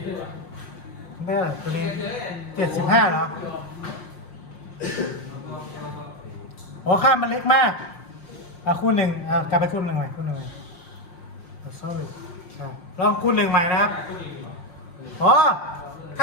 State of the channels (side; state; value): right; late; 5.6 ms